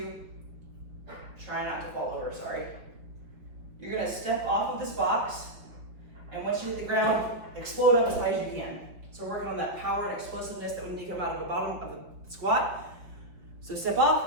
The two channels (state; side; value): late; left; 5.1 ms